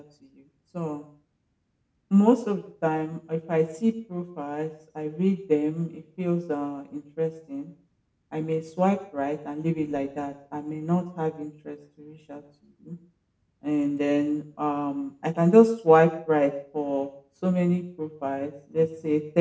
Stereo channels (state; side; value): identical; both; correlation 1.00